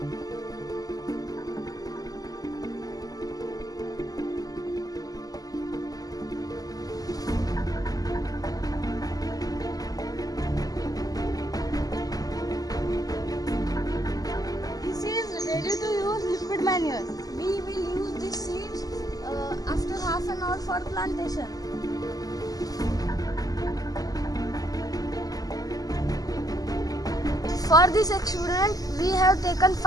Ready to use liquid manure. We will use these seeds after half an hour for plantation. For this experiment, we have taken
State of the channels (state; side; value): late; right; 0.18 ms